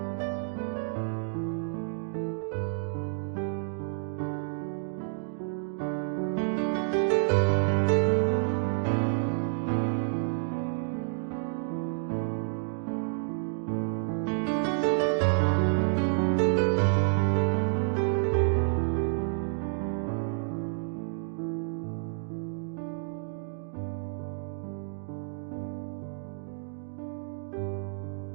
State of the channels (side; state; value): left; silent; digital silence